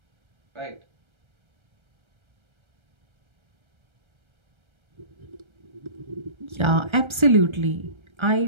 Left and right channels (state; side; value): late; left; 1.3 ms